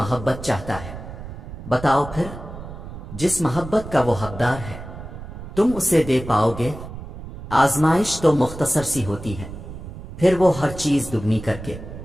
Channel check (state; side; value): noise; right; rumble, 12 dB below the sound